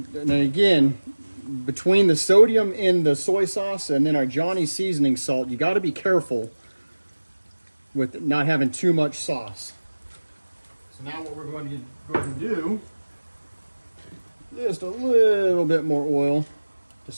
then again, between the sodium in the soy sauce and then our Johnny seasoning salt, you got to be careful with not having too much sauce. So now what we're going to do, just a little bit more oil, just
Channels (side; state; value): both; inverted; correlation -1.00